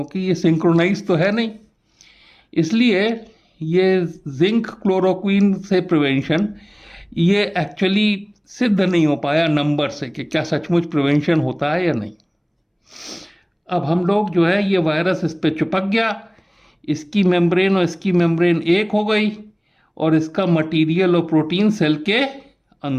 ये सिंक्रोनाइज तो है नहीं। इसलिए ये जिंक क्लोरोक्विन से प्रिवेंशन ये एक्चुअली सिद्ध नहीं हो पाया नंबर से कि क्या सचमुच प्रिवेंशन होता है या नहीं। अब हम लोग जो है ये वायरस इस पे चिपक गया, इसकी मेम्ब्रेन और इसकी मेम्ब्रेन एक हो गई और इसका मटेरियल और प्रोटीन सेल के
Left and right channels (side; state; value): both; identical; correlation 1.00